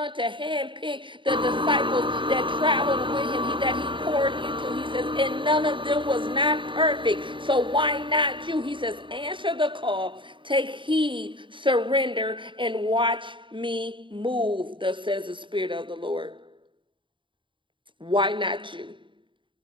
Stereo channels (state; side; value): late; left; 0.24 ms